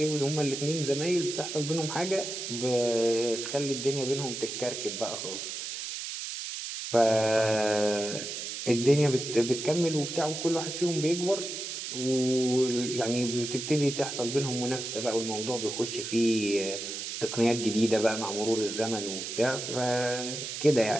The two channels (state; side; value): noise; right; hiss, 6 dB below the sound